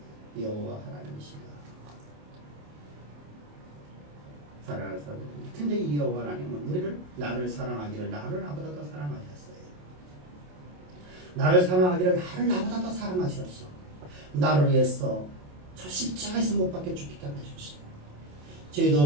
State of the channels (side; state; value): left; late; 27 ms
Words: 여호와 하나님이시다. 사랑하는 사람들, 근데 이 여호와 하나님은 나를 사랑하기를 나를 나보다 더 사랑하셨어요. 나를 사랑하기를 나를 나보다 더 사랑하셨어. 나를 위해서 저 십자가에서 못 박혀 죽기까지 하셨어요. 죄도